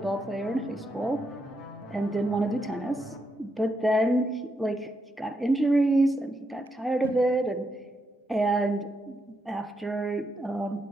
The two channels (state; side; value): normal; both; correlation 0.82